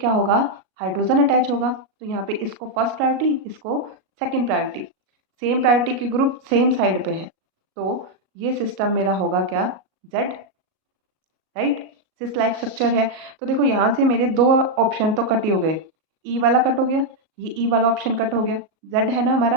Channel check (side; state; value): left; late; 37 ms